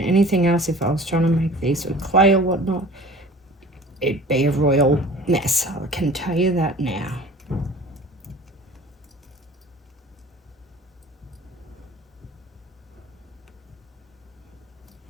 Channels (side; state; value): both; normal; correlation 0.44